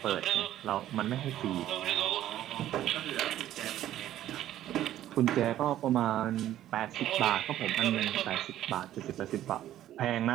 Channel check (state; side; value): quieter; left; 12.7 dB